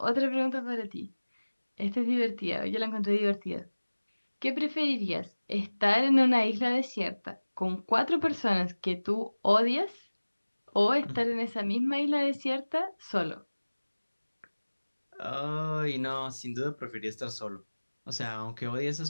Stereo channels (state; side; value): inverted; both; correlation -1.00